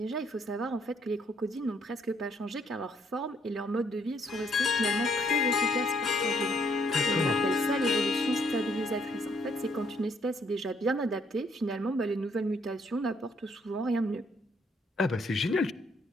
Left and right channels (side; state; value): both; normal; correlation 0.68